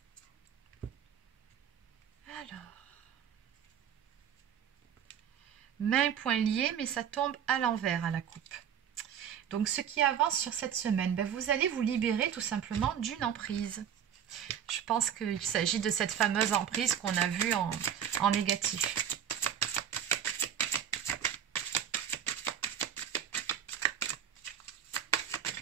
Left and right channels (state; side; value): quieter; left; 9.0 dB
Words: Alors, main, poing liés, mais ça tombe à l'envers à la coupe. Donc, ce qui avance sur cette semaine, ben, vous allez vous libérer tout simplement d'une emprise. Je pense qu'il s'agit de cette fameuse emprise qu'on a vue en négatif.